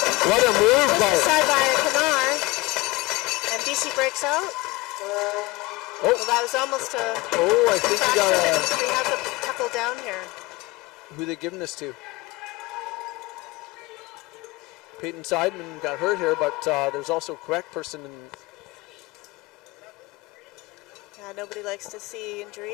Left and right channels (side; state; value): right; quieter; 21.8 dB